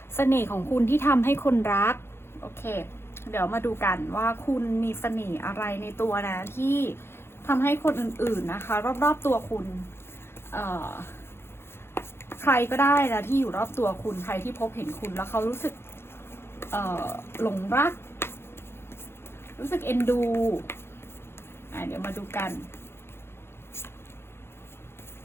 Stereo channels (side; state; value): right; late; 0.12 ms